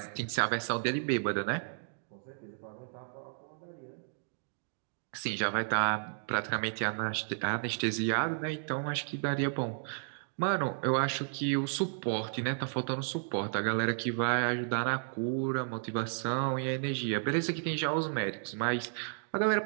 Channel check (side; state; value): left; silent; digital silence